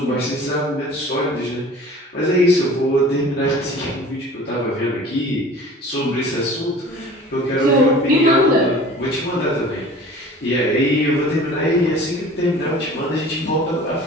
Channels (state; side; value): normal; both; correlation 0.44